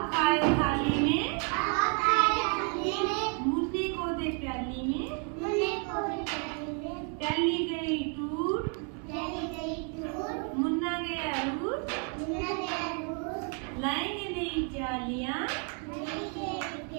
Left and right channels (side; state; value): left; quieter; 39.6 dB